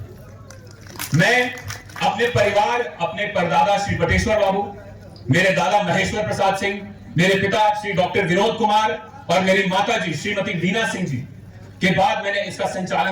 मैं अपने परिवार, अपने परदादा श्री बटेश्वर बाबू, मेरे दादा महेश्वर प्रसाद सिंह, मेरे पिता श्री डॉक्टर विनोद कुमार और मेरी माता जी श्रीमती वीना सिंह जी के बाद मैंने इसका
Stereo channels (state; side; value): identical; both; correlation 1.00